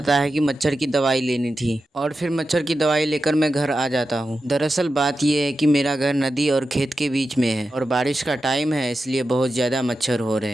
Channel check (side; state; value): both; normal; correlation 0.91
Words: है कि मच्छर की दवाई लेनी थी और फिर मच्छर की दवाई लेकर मैं घर आ जाता हूँ। दरअसल बात यह है कि मेरा घर नदी और खेत के बीच में है और बारिश का टाइम है, इसलिए बहुत ज्यादा मच्छर हो रहे हैं।